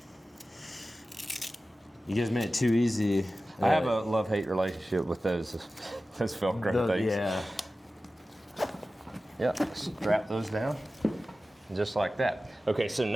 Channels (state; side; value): normal; both; correlation 0.95